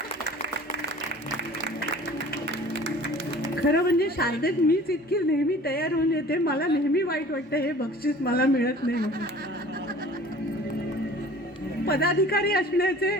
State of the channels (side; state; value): both; normal; correlation 0.46